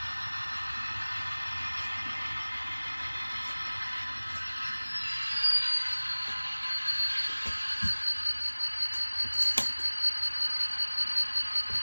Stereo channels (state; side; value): inverted; both; correlation -1.00